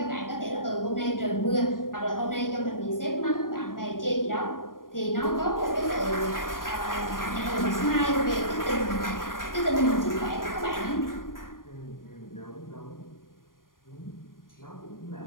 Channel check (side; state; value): right; late; 0.90 ms